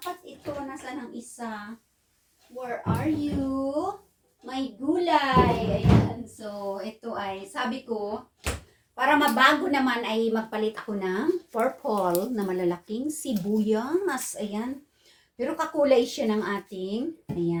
ito. Nasaan ang isa? Where are you? May gulay. Ayan, so ito ay, sabi ko, para mabago naman ay magpalit ako ng purple na malalaking sibuyas. Ayan. Pero kakulay siya ng ating.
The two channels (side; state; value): both; identical; correlation 1.00